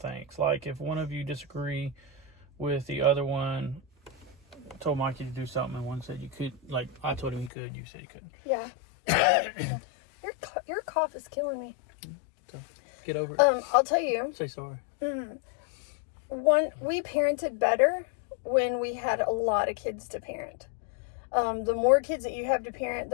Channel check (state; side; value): drops out; right; at 7.5 s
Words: Like if one of you disagree with the other one, told Mikey to do something, and one said you could. Like, I told him he could, you said he couldn't. Yeah. Your cough is killing me. So get over it. I'll tell you. Say sorry. We parented better when we had a lot of kids to parent. The more kids that you have to parent,